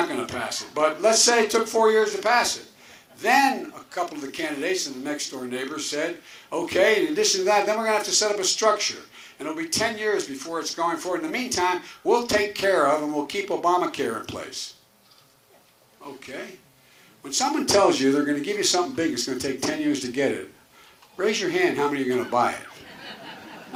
going to pass it. But let's say it took 4 years to pass it. Then a couple of the candidates and the next door neighbors said, okay, in addition to that, then we're going to have to set up a structure. And it'll be 10 years before it's going forward. In the meantime, we'll take care of and we'll keep Obamacare in place. Okay. When someone tells you they're going to give you something big, it's going to take 10 years to get it, raise your hand how many are going to buy it.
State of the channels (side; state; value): both; identical; correlation 1.00